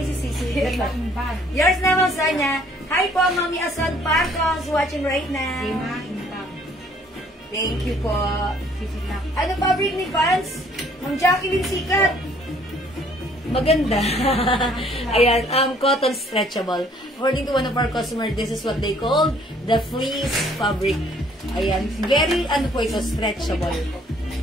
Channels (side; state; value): both; normal; correlation 0.61